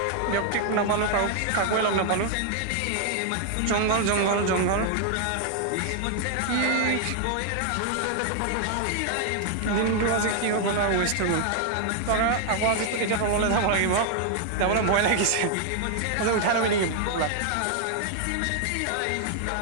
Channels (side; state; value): both; different; correlation 0.00